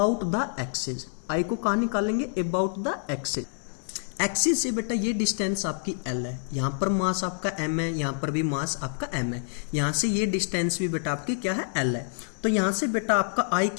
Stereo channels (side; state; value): right; silent; 60 dB below the other